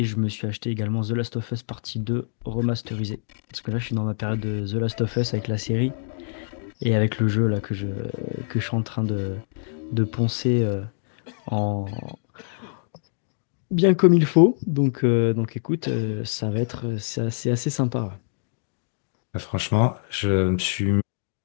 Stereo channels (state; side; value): silent; right; digital silence